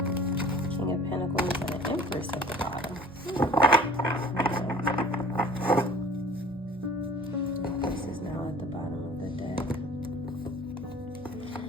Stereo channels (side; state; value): both; normal; correlation 0.48